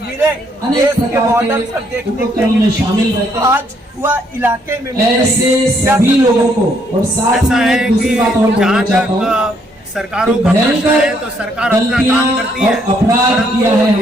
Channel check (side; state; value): both; normal; correlation 0.70